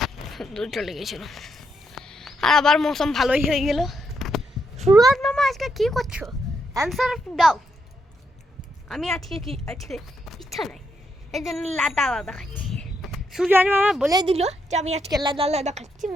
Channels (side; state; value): both; normal; correlation 0.79